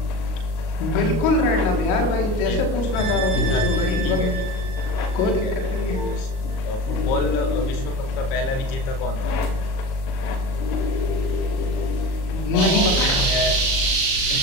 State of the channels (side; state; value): right; late; 38 ms